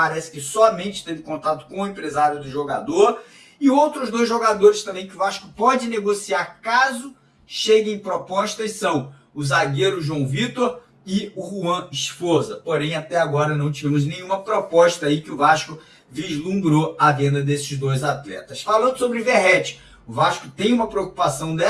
que somente teve contato com o empresário do jogador. E outros dois jogadores também que o Vasco pode negociar caso cheguem propostas são o zagueiro João Vitor e o Juan Esforza. Porém, até agora não tivemos nenhuma proposta aí que o Vasco vislumbrou a venda desses dois atletas. Falando sobre Verratti, o Vasco tem uma preocupação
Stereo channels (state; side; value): identical; both; correlation 1.00